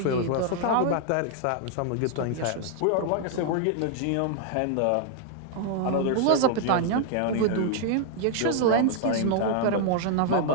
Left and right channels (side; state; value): both; different; correlation 0.00